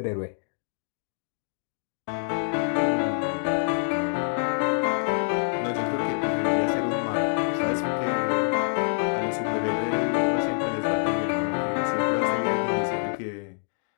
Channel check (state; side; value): silent; right; digital silence